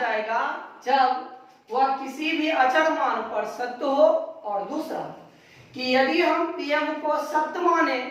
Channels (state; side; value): identical; both; correlation 1.00